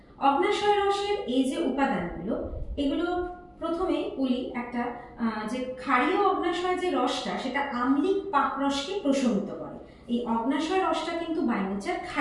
অগ্ন্যাশয় রসের এই যে উপাদানগুলো, এগুলো প্রথমে বলি একটা যে ক্ষারীয় অগ্ন্যাশয় যে রসটা সেটা আম্লিক পাকরসকে প্রশমিত করে। এই অগ্ন্যাশয় রসটা কিন্তু বাই নেচার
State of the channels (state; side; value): identical; both; correlation 1.00